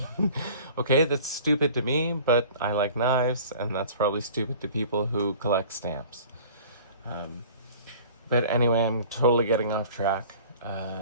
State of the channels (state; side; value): inverted; both; correlation -0.46